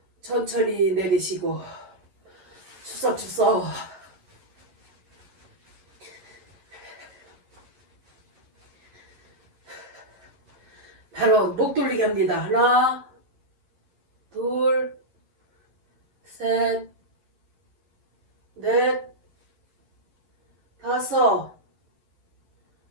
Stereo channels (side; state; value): left; late; 11 ms